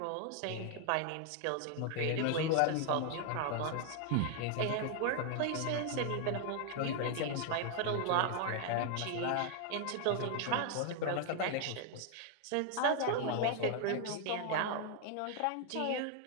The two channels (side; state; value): both; different; correlation 0.00